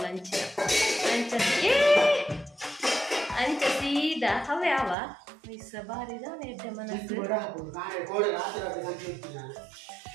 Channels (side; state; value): left; drops out; at 5.0 s